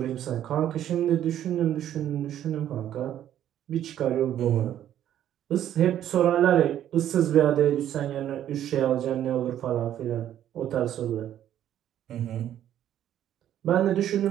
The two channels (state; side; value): quieter; left; 11.2 dB